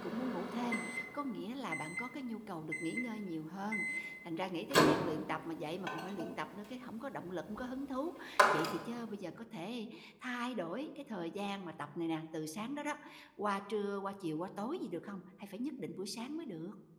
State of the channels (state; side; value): identical; both; correlation 1.00